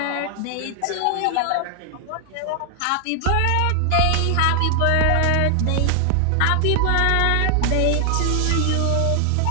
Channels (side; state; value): both; different; correlation 0.00